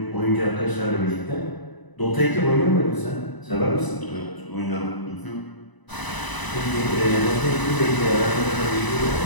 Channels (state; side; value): late; right; 1.0 ms